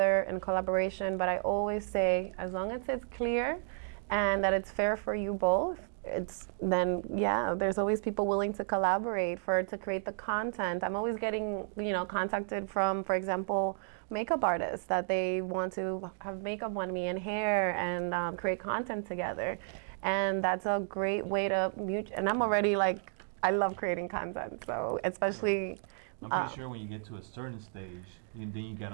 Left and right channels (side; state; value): left; silent; digital silence